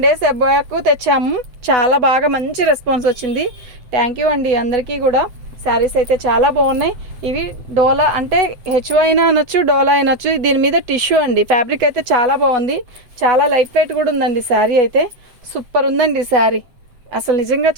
days అబ్బాయికు తెచ్చాము. చాలా బాగా మంచి రెస్పాన్స్ వచ్చింది. థ్యాంక్ యూ అండి అందరికీ కూడా. శారీస్ అయితే చాలా బాగున్నాయి. ఇవి డోలా అంటే హెచ్ఓ అయినా అనొచ్చు, డోలా అనొచ్చు. దీని మీద టిష్యూ అండి. ఫ్యాబ్రిక్ అయితే చాలా బాగుంది. చాలా లైట్ వెయిట్ కూడా ఉందండి. శారీ అయితే సూపర్ ఉందండి. శారీ అసలు నిజంగా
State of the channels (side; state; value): left; late; 7.7 ms